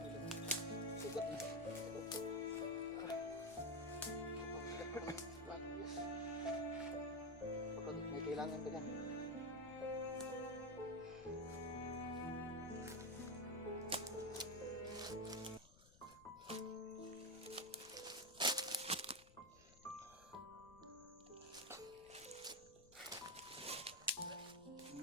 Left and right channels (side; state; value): left; noise; rumble, 22 dB below the sound